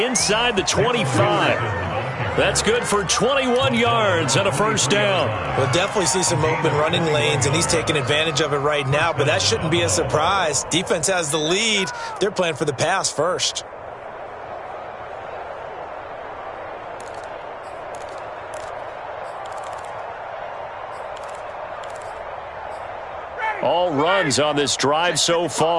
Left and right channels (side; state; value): both; identical; correlation 1.00